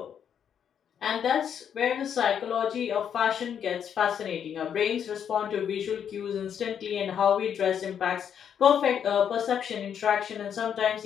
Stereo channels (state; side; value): quieter; right; 8.4 dB